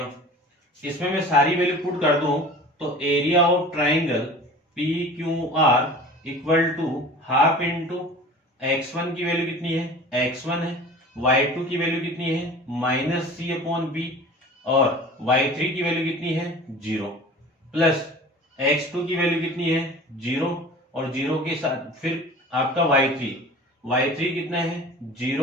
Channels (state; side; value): normal; both; correlation 0.41